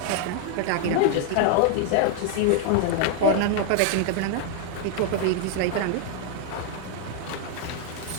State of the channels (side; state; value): both; different; correlation 0.00